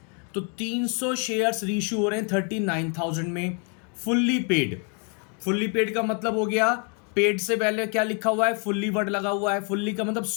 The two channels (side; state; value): right; quieter; 38.3 dB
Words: तो 300 शेयर्स री इशू हो रहे हैं 39,000 में। Fully paid. फुल्ली पेड का मतलब हो गया, पेड से पहले क्या लिखा हुआ है? फुल्ली वर्ड लगा हुआ है। फुल्ली का मतलब